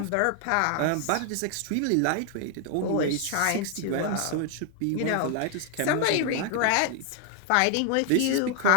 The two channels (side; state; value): both; different; correlation 0.00